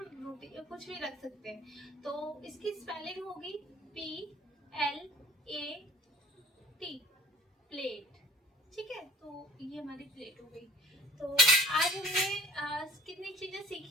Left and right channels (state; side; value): normal; both; correlation 0.49